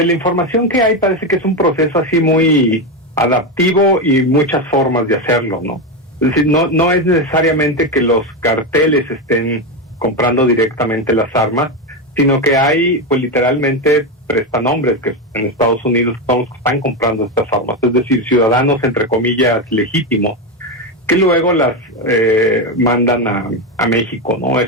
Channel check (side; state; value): both; normal; correlation 0.12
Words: la información que hay parece que es un proceso así muy adaptivo y muchas formas de hacerlo, ¿no? Es decir, no es necesariamente que los carteles estén comprando directamente las armas, sino que hay, pues literalmente, prestanombres que en Estados Unidos son los que están comprando estas armas, es decir, ciudadanos, entre comillas, legítimos, que luego las mandan a México, ¿no?